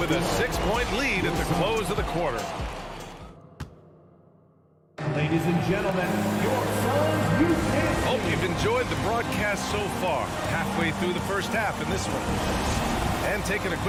a 6-point lead at the close of the quarter. Ladies and gentlemen, your Suns, you can't. Hope you've enjoyed the broadcast so far. Halfway through the first half in this one. And taking a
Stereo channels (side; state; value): both; identical; correlation 1.00